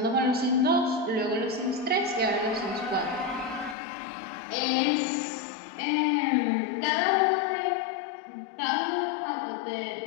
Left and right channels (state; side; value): drops out; right; at 3.8 s